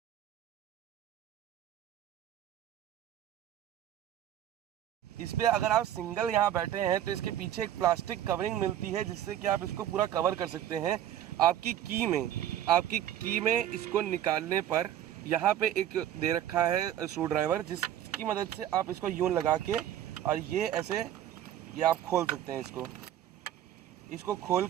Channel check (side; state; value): left; quieter; 11.5 dB